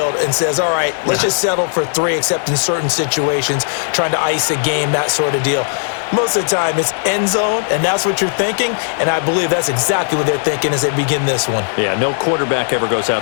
and says, all right, let's just settle for 3, except in certain situations, trying to ice a game, that sort of deal. Most of the time, it's end zone, and that's what you're thinking, and I believe that's exactly what they're thinking as they begin this one. Yeah, no quarterback ever goes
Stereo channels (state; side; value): silent; right; digital silence